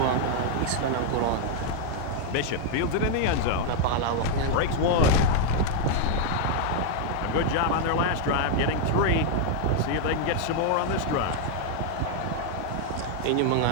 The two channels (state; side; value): different; both; correlation 0.00